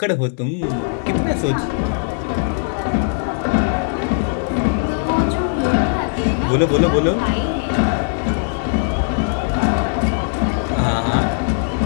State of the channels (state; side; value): silent; right; digital silence